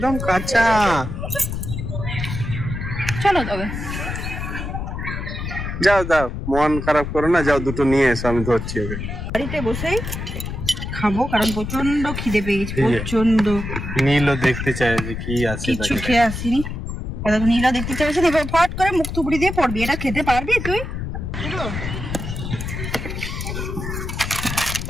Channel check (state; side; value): noise; left; rumble, 5 dB below the sound